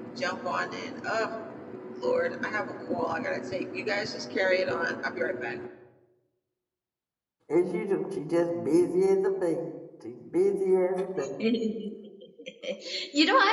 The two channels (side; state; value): both; identical; correlation 1.00